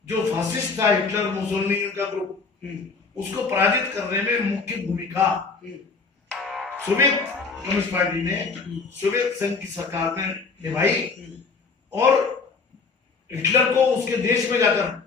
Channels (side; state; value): right; quieter; 4.6 dB